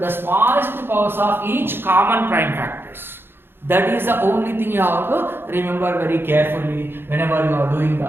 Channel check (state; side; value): late; left; 0.10 ms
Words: smallest powers of each common prime factors. That is the only thing you have to remember very carefully whenever you are doing